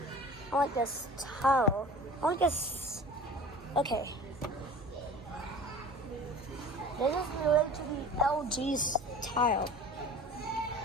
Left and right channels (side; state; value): both; normal; correlation 0.40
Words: I like this tile. I like this. Okay. This is related to the LG's tile.